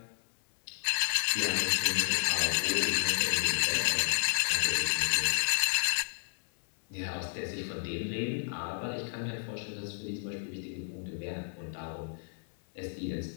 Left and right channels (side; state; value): right; silent; 57 dB below the other